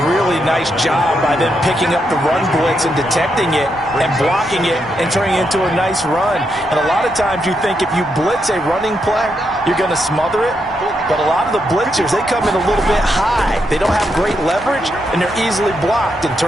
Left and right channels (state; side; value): normal; both; correlation 0.81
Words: really nice job by them picking up the run blitz and detecting it and blocking it and turning it into a nice run. And a lot of times you think if you blitz a running play, you're going to smother it. But a lot of the blitzers, they come in a little bit high. They don't have great leverage, and they're easily blocked and